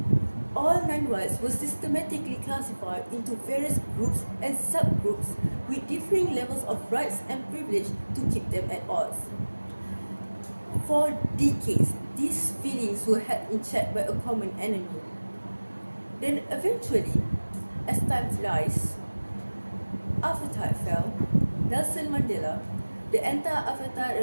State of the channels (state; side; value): inverted; both; correlation -1.00